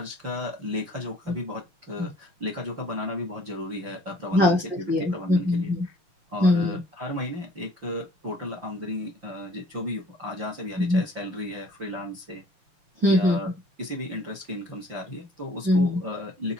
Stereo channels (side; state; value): left; late; 5.8 ms